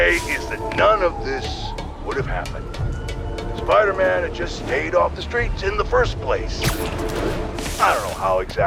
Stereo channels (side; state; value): both; identical; correlation 1.00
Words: is that none of this would have happened. Spider-Man had just stayed off the streets in the first place. I don't know how